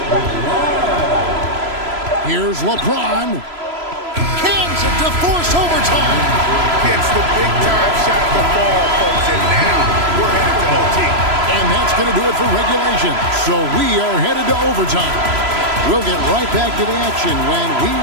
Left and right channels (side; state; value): left; late; 3.0 ms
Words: LeBron. Here's LeBron. Cans it to force overtime. Gets the big-time shot to fall, folks, and now we're headed to OT. And that's going to do it for regulation. So we are headed to overtime. We'll get right back to the action when we